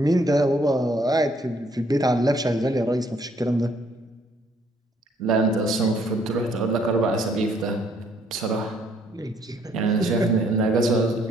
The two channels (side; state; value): both; normal; correlation 0.66